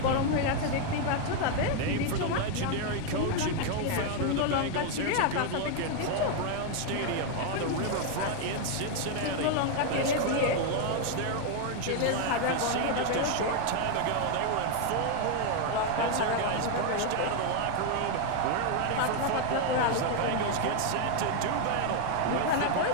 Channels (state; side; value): different; both; correlation 0.01